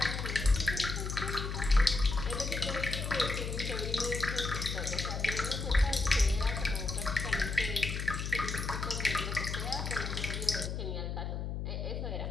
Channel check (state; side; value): noise; left; hum, 3 dB below the sound